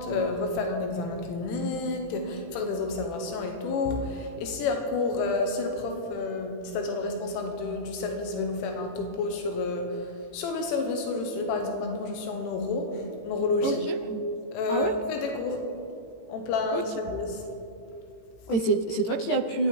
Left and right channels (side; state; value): right; late; 18 ms